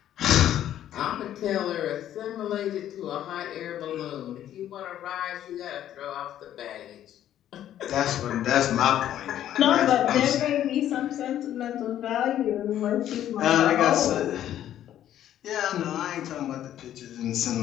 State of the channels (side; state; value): right; quieter; 11.5 dB